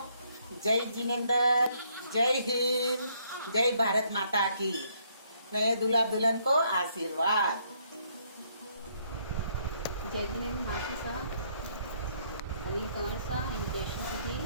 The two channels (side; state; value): both; inverted; correlation -0.70